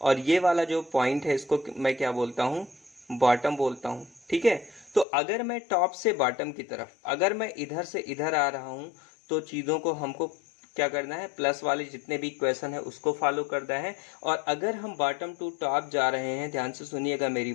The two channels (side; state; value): right; drops out; at 5.1 s